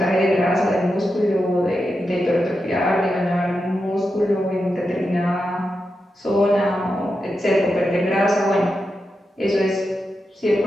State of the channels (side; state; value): both; normal; correlation 0.88